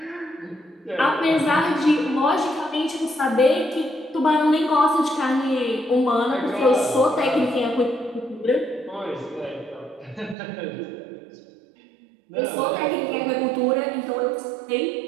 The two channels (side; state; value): left; drops out; at 10.4 s